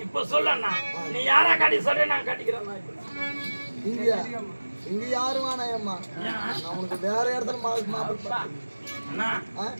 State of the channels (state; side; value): inverted; both; correlation -1.00